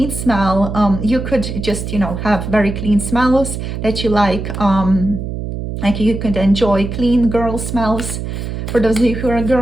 smell. You could just, you know, have very clean smells that you like you could enjoy clean girl smells, for those of you who are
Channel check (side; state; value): right; noise; hum, 6 dB below the sound